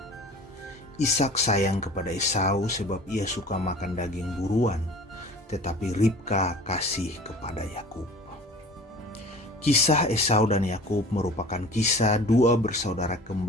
Ishak sayang kepada Esau sebab ia suka makan daging buruan, tetapi Ribka kasih kepada Yakub. Kisah Esau dan Yakub merupakan kisah dua bersaudara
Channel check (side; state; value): both; normal; correlation 0.42